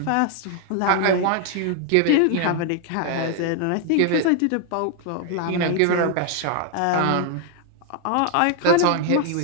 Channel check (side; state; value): both; different; correlation 0.00